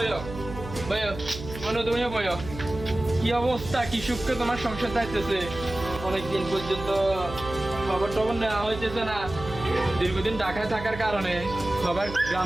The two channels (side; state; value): right; noise; hum, 11 dB below the sound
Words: বইও। মনে তুমিও বইও। কি অবস্থা, কি সুখে তোমার সংসার যাইতেছে? অনেকদিন পর্যন্ত খবর টবর নেওয়া হইতেছে না। দীর্ঘদিন ঢাকায় থাকার কারণে